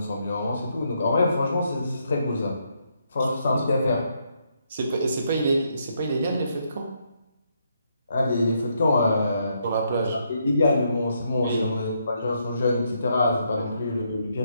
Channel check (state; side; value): inverted; both; correlation -0.76